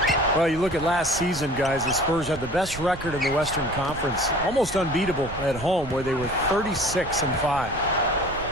Well, you look at last season, guys, the Spurs had the best record in the Western Conference, almost unbeatable at home, where they were 36-5.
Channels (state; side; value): noise; right; rumble, 13 dB below the sound